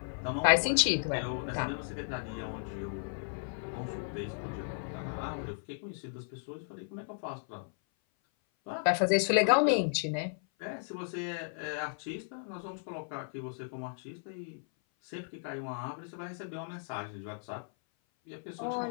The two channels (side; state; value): right; silent; 55 dB below the other